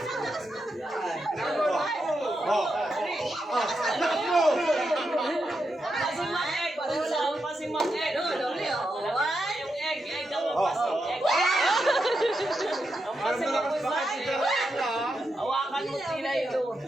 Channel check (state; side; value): normal; both; correlation 0.85